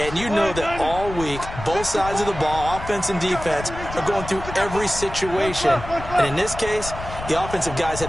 you know that all week, both sides of the ball, offense and defense, are going through every situation. And in this case, the offensive guys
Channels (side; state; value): left; noise; rumble, 10 dB below the sound